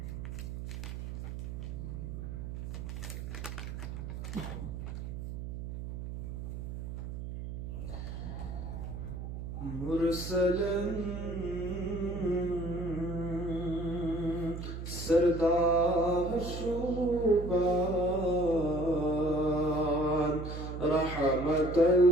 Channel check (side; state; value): right; noise; hum, 7 dB below the sound